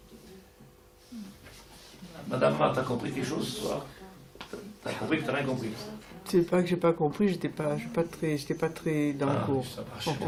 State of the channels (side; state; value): both; identical; correlation 1.00